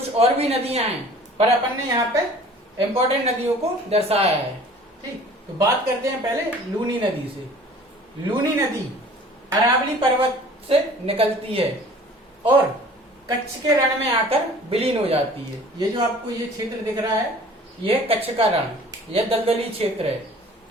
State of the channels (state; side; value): normal; both; correlation 0.48